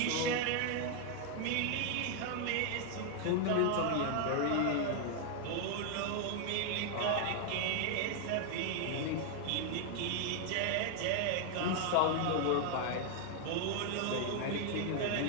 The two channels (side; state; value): both; different; correlation 0.00